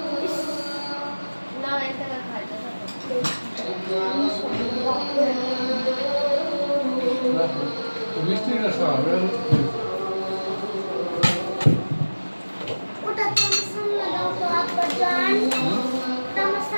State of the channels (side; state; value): both; inverted; correlation -1.00